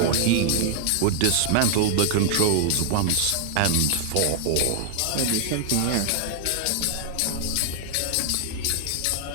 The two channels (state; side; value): different; both; correlation 0.00